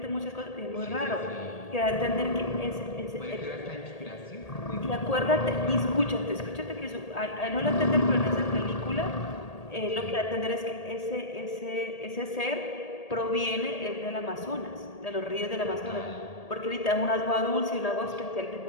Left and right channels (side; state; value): right; late; 1.8 ms